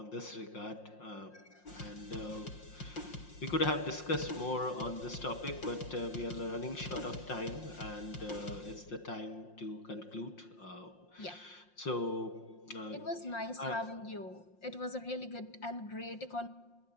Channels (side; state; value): right; late; 5.6 ms